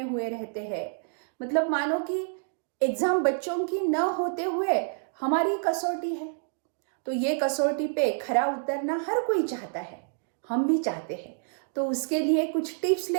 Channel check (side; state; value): left; silent; digital silence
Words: हुए रहते हैं। मतलब मानो कि एग्ज़ाम बच्चों की न होते हुए हमारी कसौटी है। तो ये कसौटी पे खरा उतरना हर कोई चाहता है, हम भी चाहते हैं। तो उसके लिए कुछ टिप्स